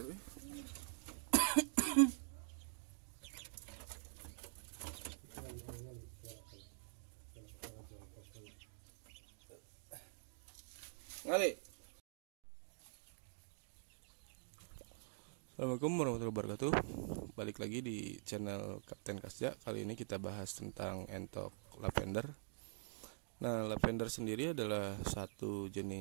Ngali. Assalamualaikum warahmatullahi wabarakatuh. Balik lagi di channel Kapten Kasja. Kali ini kita bahas tentang entok lavender. Nah, lavender sendiri adalah satu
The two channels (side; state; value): left; silent; digital silence